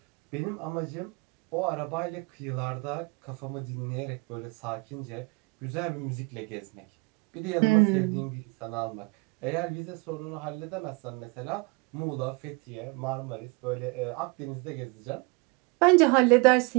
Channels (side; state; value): left; quieter; 28.2 dB